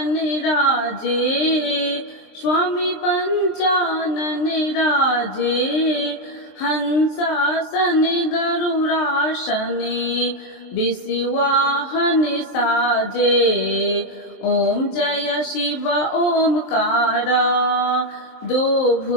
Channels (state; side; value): late; right; 23 ms